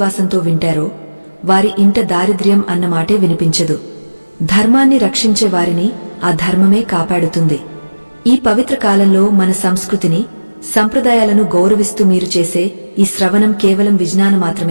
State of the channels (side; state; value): both; inverted; correlation -1.00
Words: వింటారో వారి ఇంట దారిద్ర్యం అన్నమాటే వినిపించదు. ధర్మాన్ని రక్షించే వారిని ఆ ధర్మమే కాపాడుతుంది. ఈ పవిత్ర కాలంలో మన సంస్కృతిని, సంప్రదాయాలను గౌరవిస్తూ మీరు చేసే ఈ శ్రవణం కేవలం విజ్ఞానం